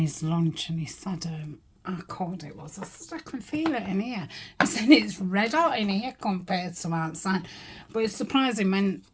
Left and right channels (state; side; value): identical; both; correlation 1.00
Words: lunch, and he said how cold it was. I said, I can feel it in here. He said it's red hot in here compared to outside. But it's surprising when,